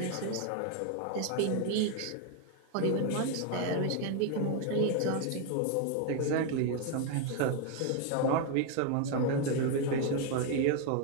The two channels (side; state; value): both; different; correlation 0.01